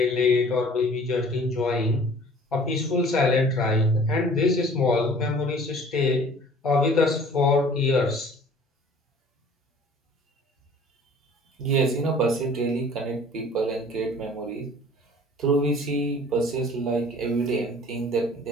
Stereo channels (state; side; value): normal; both; correlation 0.50